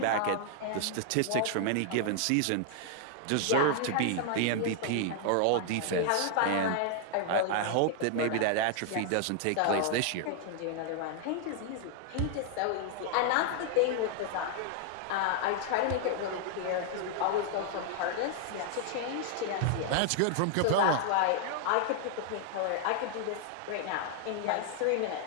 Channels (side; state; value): both; different; correlation 0.00